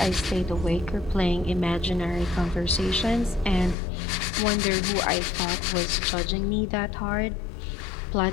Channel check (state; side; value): drops out; right; at 3.8 s